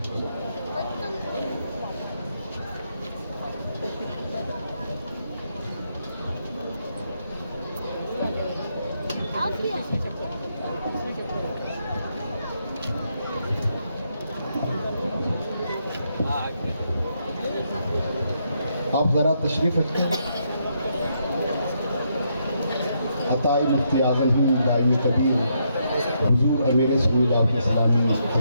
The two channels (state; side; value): inverted; both; correlation -0.77